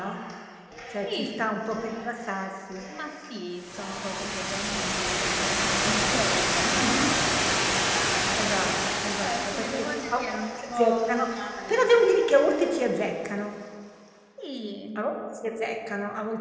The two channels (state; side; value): identical; both; correlation 1.00